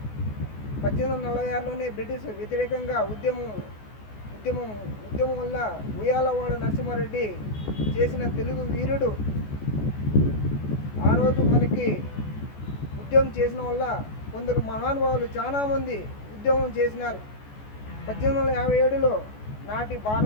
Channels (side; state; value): right; late; 14 ms